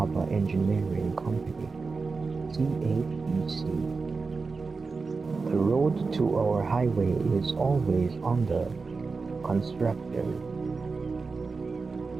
Engineering Company, CHEC. The road to our highway is always under construction,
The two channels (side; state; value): left; quieter; 4.4 dB